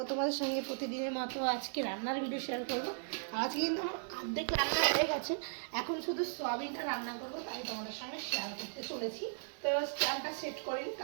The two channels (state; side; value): silent; left; digital silence